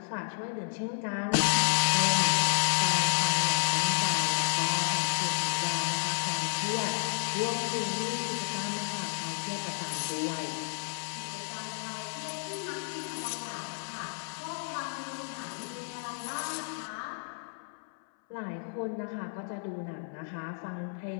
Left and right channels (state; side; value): silent; right; 57 dB below the other